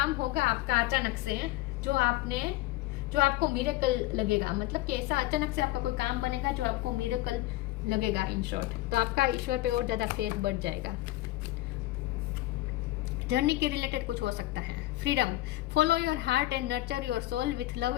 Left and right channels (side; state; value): right; quieter; 17.5 dB